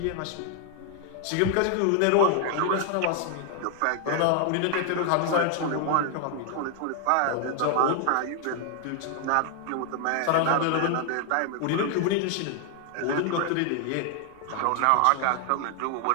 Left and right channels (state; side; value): different; both; correlation 0.00